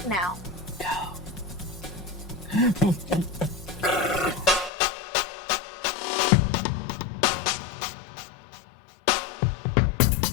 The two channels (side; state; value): right; drops out; at 4.7 s